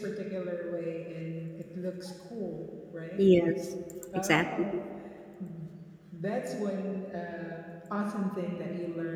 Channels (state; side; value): identical; both; correlation 1.00